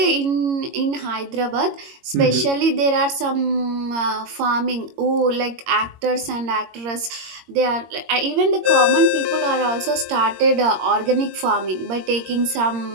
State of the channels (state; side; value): late; left; 22 ms